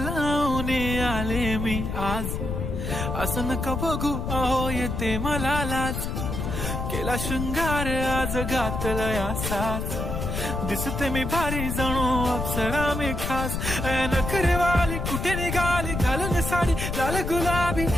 आले मी आज, असं नका बघू अहो येते मला लाज. केला शृंगार आज घातला साज, दिसते मी भारी जणू अप्सरा मी खास. नखरेवाली कुठे निघाली घालून साडी लाल गुलाबी,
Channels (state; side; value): noise; left; rumble, 3 dB below the sound